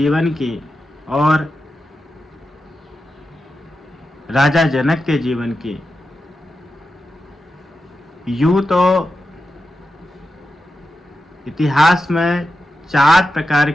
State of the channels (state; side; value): normal; both; correlation 0.90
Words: की और राजा जनक के जीवन की। यूं तो इतिहास में 4 प्रकार